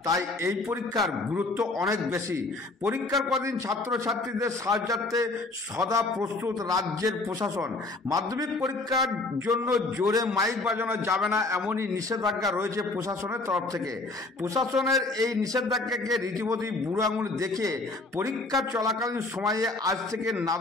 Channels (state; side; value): quieter; right; 3.1 dB